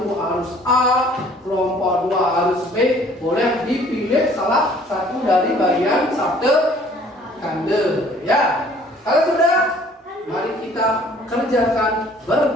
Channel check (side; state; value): both; normal; correlation 0.55